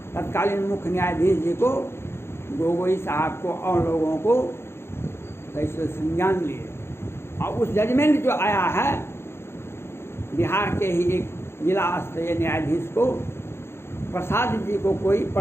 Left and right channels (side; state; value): right; late; 0.12 ms